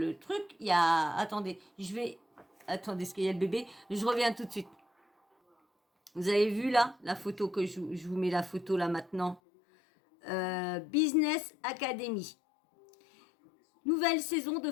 truc, il y a... Attendez, attendez, est-ce qu'il y a le bébé? Je reviens tout de suite. Vous avez vu là, la photo que je vous mets la photo là maintenant. Business Academy. Nouvelle saison de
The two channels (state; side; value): drops out; right; at 9.4 s